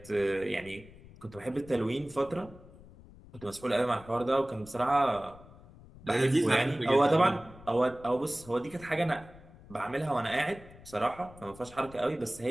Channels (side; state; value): left; noise; rumble, 20 dB below the sound